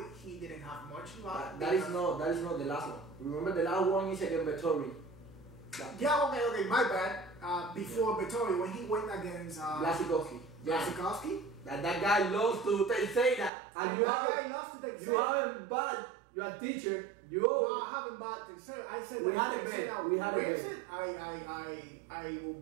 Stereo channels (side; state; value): left; drops out; at 13.5 s